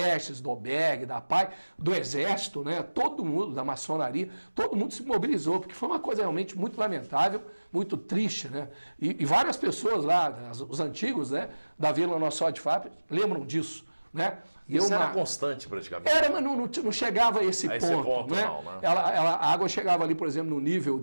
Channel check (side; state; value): both; inverted; correlation -1.00